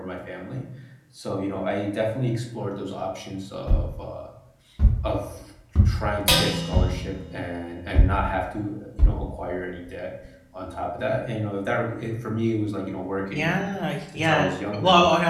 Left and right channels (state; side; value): identical; both; correlation 1.00